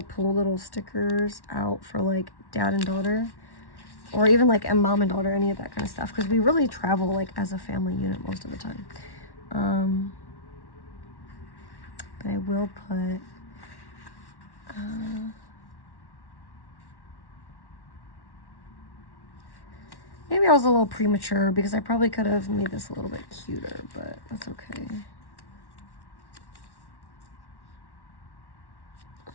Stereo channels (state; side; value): late; right; 1.1 ms